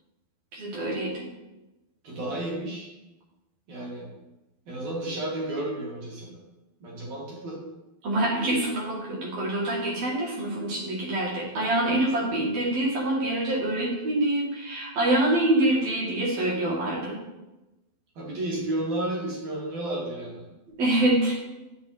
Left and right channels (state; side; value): late; left; 12 ms